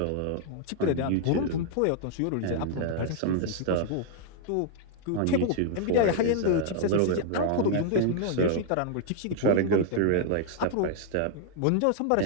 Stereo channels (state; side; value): different; both; correlation 0.00